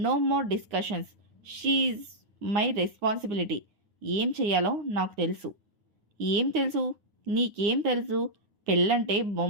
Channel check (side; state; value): left; late; 9.5 ms